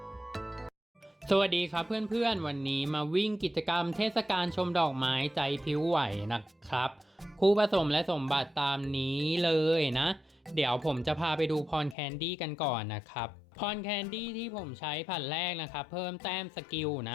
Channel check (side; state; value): right; drops out; at 12.0 s